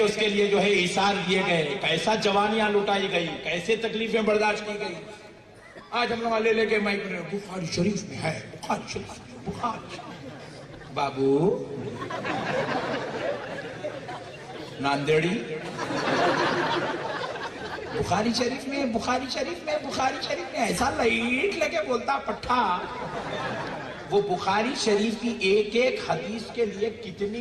اس کے لیے جو ہے ایثار دیے گئے، کیسا جوانیاں لٹائی گئی، کیسے تکلیفیں برداشت کی گئی. آج ہم لوگ لے کے مائک میں بخاری شریف میں ہے، بخاری شریف میں، بخاری شریف. بابو ناندیڑی بخاری شریف میں، بخاری شریف میں، بخاری شریف میں ایسا لائٹ لگے بولتا پٹھا. وہ بخاری شریف کی ایک ایک حدیث کے لیے کتنی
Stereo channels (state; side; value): identical; both; correlation 1.00